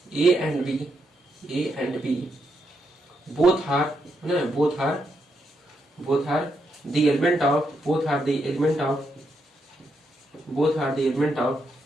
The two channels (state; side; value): normal; both; correlation 0.81